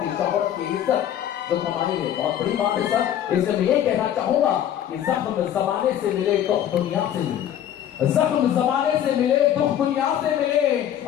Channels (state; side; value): quieter; right; 10.6 dB